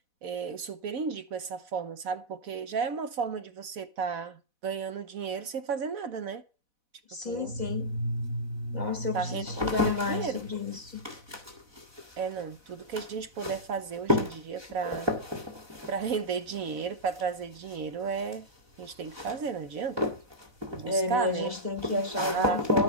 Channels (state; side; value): late; left; 4.1 ms